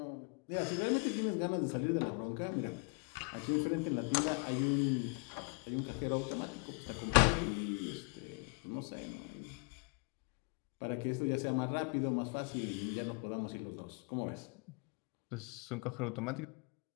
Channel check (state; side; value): quieter; right; 35.9 dB